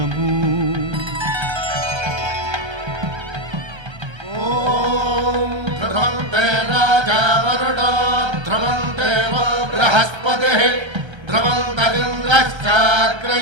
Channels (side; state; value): left; late; 1.3 ms